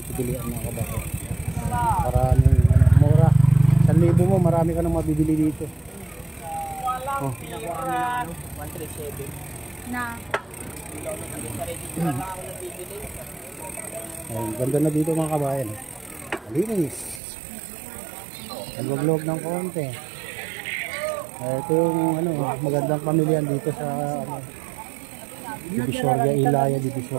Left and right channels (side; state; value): left; drops out; at 17.2 s